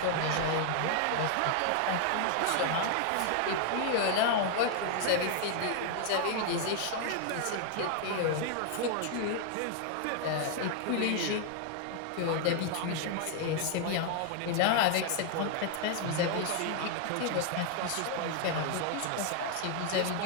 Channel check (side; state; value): both; different; correlation 0.00